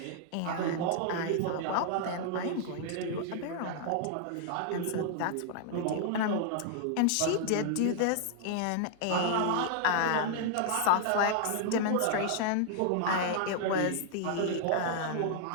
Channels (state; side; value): different; both; correlation -0.01